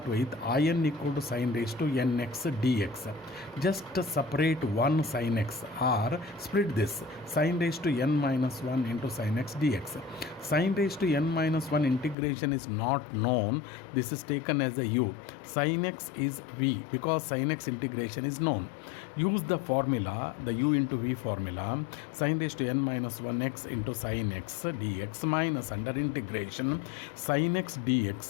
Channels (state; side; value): drops out; right; at 12.2 s